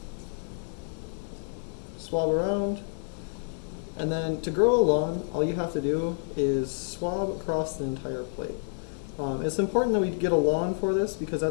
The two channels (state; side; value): silent; right; 59 dB below the other